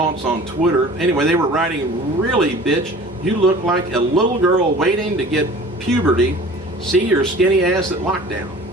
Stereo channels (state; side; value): normal; both; correlation 0.44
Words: on Twitter. Anyway, they were writing, really, bitch, you look like a little girl waiting to get puberty. See your skinny ass at lockdown.